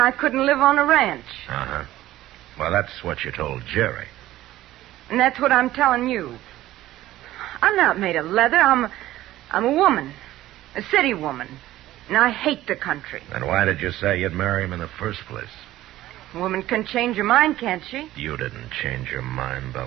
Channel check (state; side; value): quieter; left; 15.0 dB